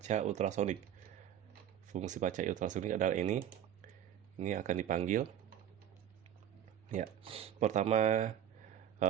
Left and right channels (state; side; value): quieter; left; 10.3 dB